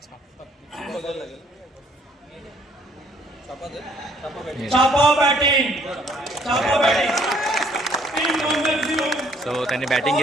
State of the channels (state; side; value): normal; both; correlation 0.63